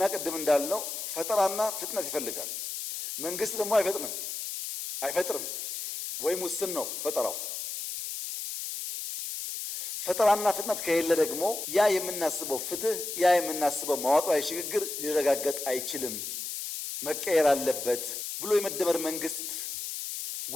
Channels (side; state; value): left; noise; hiss, 5 dB below the sound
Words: ቅድም እንዳልነው ፈጠራና ፍጥነት ይፈልጋል። መንግስት ደግሞ አይፈጥርም ወይም ውስን ነው ፈጠራው። ፈጠራና ፍጥነት ከሌለ ደግሞ ያ የምናስበው ፍትህ፣ ያ የምናስበው መዋቅራዊ ሽግግር ሊረጋገጥ አይችልም፣ መቀየር አለበት ብሎ የመደመር መንግስት